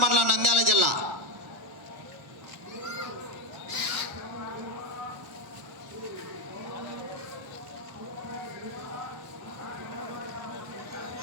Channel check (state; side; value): late; left; 1.1 ms